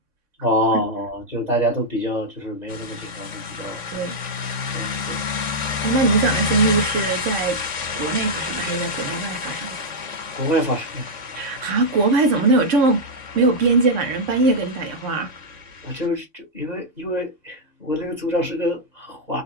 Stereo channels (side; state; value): left; late; 3.6 ms